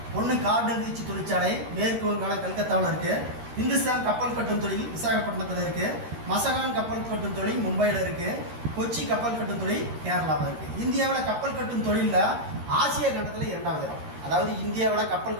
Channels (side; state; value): left; late; 13 ms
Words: ஒன்று கார்டன் ரீச் தொழிற்சாலை மேற்கு வங்காளம் கல்கத்தாவில் இருக்குது. இந்துஸ்தான் கப்பல் கட்டும் தொழில் விசாகப்பட்டினத்தில் இருக்குது. மசகான் கப்பல் கட்டும் தொழில் மும்பையில் இருக்குது. கொச்சி கப்பல் கட்டும் தொழில் கேரளாவில் இருக்குது. இந்தியாவில் கப்பல் கட்டும் தொழிலில் ஆசிய கண்டத்தில் 2வது இடம். அதாவது இந்தியாவில் கப்பல்